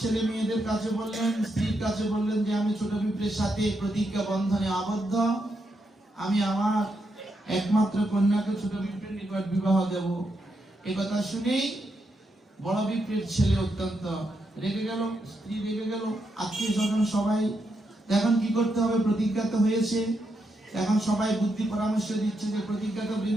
মেয়েদের কাছে বললেন, স্ত্রীর কাছে বললেন যে আমি ছোট বিপ্রের সাথে প্রতিজ্ঞা বন্ধনে আবদ্ধ, আমি আমার একমাত্র কন্যাকে ছোট বিপ্রের নিকট বিবাহ দেব। এই কথা শুনেই বড় বিপ্রের ছেলে অত্যন্ত রেগে গেল, স্ত্রী রেগে গেল, আত্মীয় স্বজন সবাই। এখন কি করতে হবে? প্রতিজ্ঞা তো হয়েছে। এখন সবাই বুদ্ধি পরামর্শ দিচ্ছে যে প্রতিজ্ঞা তো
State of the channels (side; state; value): both; normal; correlation 0.82